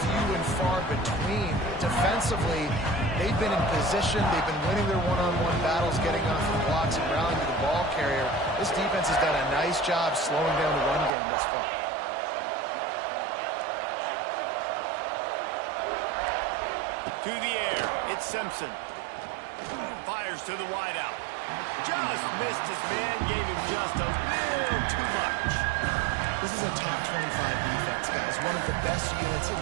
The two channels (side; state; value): left; drops out; at 11.1 s